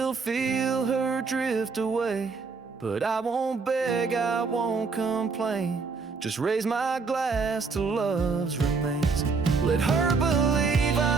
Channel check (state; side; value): quieter; left; 4.7 dB